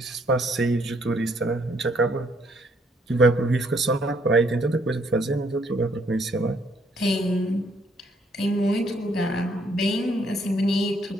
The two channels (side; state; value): both; normal; correlation 0.68